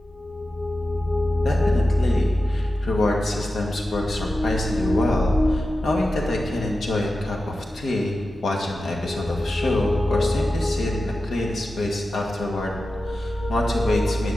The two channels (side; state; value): both; normal; correlation 0.92